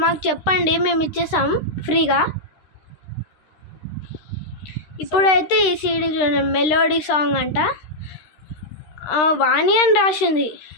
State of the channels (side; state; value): right; late; 13 ms